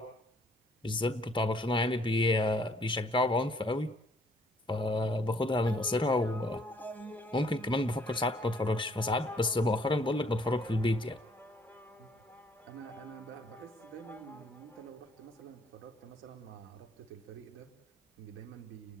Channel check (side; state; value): both; normal; correlation 0.63